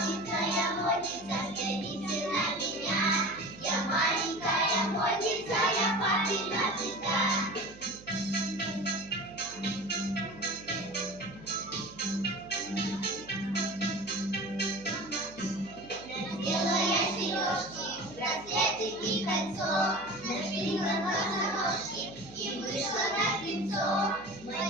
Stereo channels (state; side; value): noise; right; hum, 20 dB below the sound